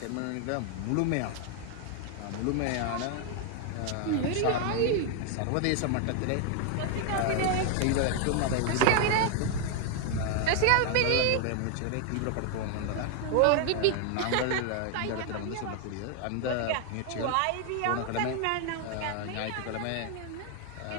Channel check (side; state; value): both; different; correlation 0.00